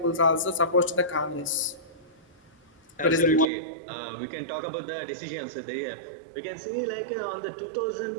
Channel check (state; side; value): drops out; left; at 3.5 s